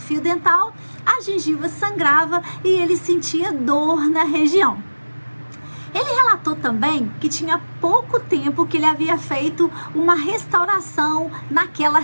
dental, a gengiva sangrava e ele sentia dor na região. Ele relatou também que tinha pouco tempo que ele havia feito uma restauração naquela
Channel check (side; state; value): both; inverted; correlation -1.00